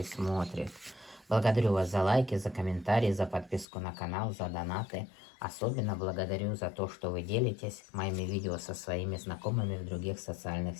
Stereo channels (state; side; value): drops out; right; at 3.7 s